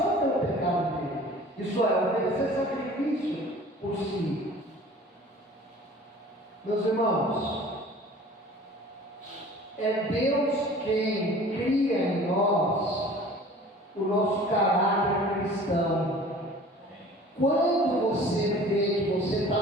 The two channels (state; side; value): normal; both; correlation 0.46